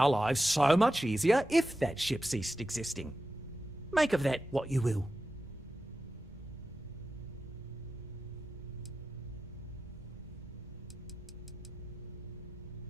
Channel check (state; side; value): normal; both; correlation 0.92